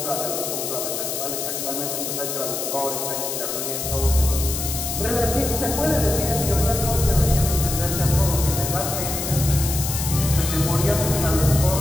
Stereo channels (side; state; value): left; noise; hiss, 4 dB below the sound